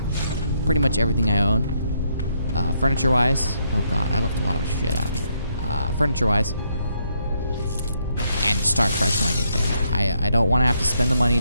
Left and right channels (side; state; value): both; inverted; correlation -0.75